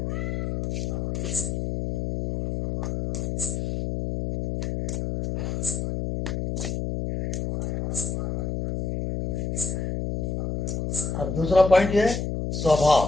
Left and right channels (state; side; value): noise; left; hum, 2 dB below the sound